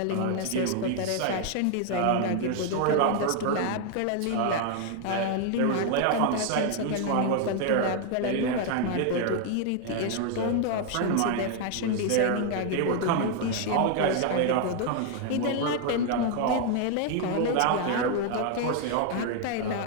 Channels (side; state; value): both; different; correlation 0.00